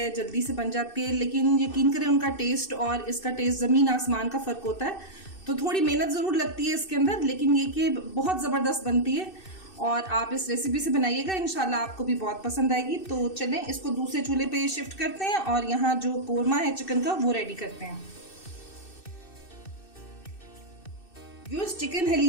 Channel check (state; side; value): late; right; 2.6 ms